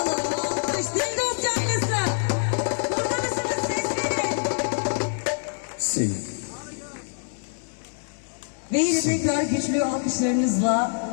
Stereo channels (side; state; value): right; silent; 62 dB below the other